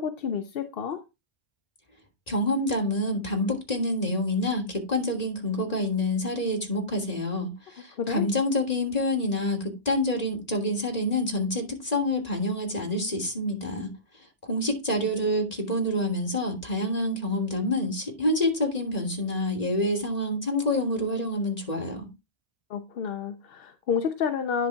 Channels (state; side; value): late; right; 1.9 ms